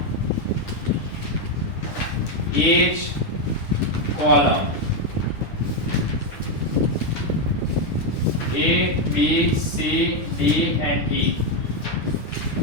each column A B C D and E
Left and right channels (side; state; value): right; late; 10 ms